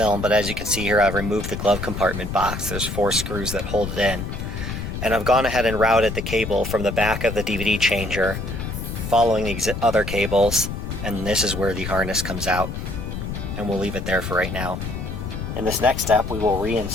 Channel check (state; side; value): noise; left; rumble, 6 dB below the sound